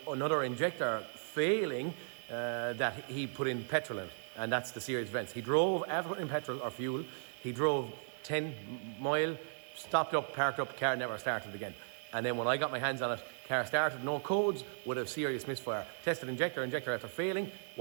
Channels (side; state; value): left; silent; 54 dB below the other